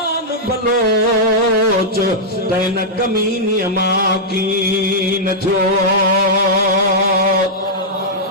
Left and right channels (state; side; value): normal; both; correlation -0.08